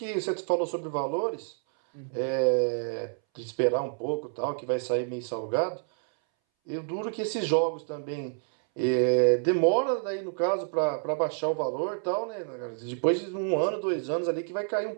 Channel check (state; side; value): silent; left; 59 dB below the other